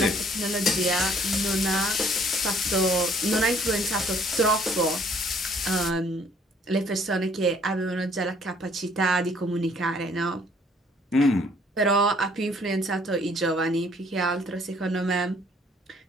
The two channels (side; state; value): both; normal; correlation 0.61